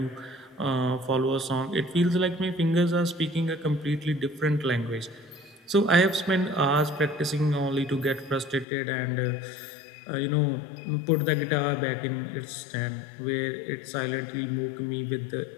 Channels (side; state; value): right; drops out; at 8.7 s